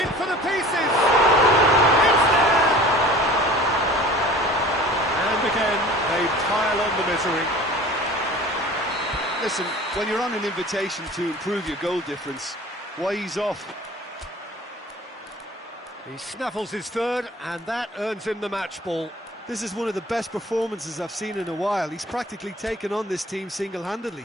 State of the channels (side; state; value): both; normal; correlation 0.44